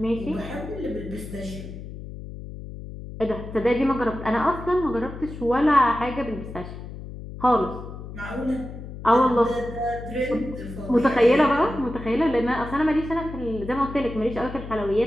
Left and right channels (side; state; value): left; noise; hum, 11 dB below the sound